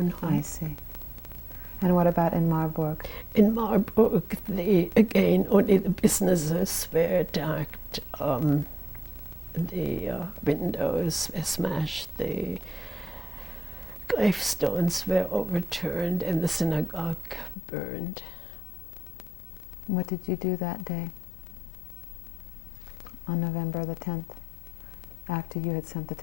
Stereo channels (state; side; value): drops out; right; at 17.6 s